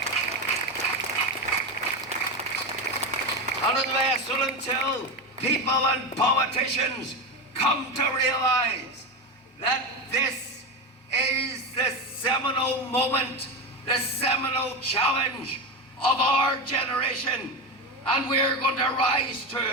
And unless or until people and politicians come to realize that this is the seminal moment, the seminal challenge of our generation, and we're going to rise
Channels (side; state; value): both; normal; correlation 0.17